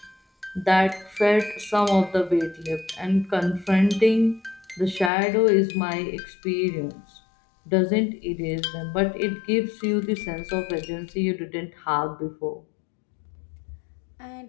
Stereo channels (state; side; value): drops out; right; at 5.1 s